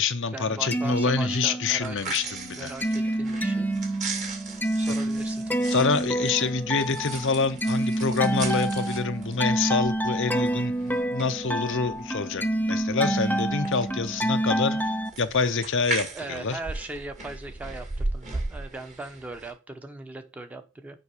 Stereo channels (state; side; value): normal; both; correlation 0.43